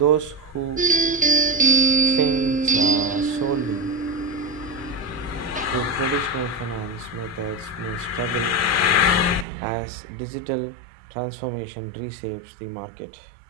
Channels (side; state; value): left; drops out; at 9.5 s